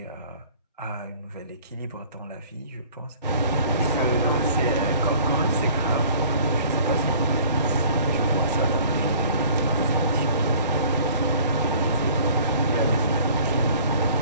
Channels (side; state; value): both; inverted; correlation -0.52